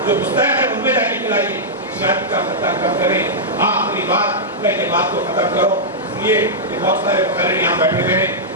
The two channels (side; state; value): both; normal; correlation -0.10